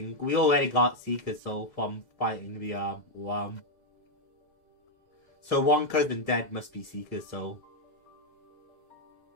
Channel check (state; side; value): late; right; 2.0 ms